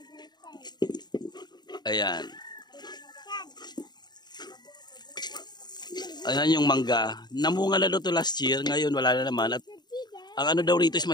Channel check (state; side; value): late; right; 0.20 ms